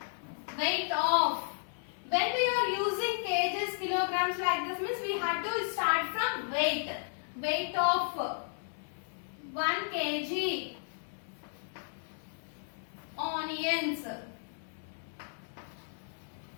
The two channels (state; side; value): silent; right; 55 dB below the other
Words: when we are using kgs, kilograms like this means we have to start from weight. Weight of 1 kg onions